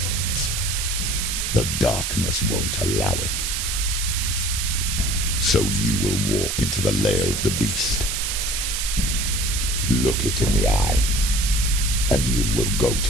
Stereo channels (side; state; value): right; noise; hiss, 1 dB below the sound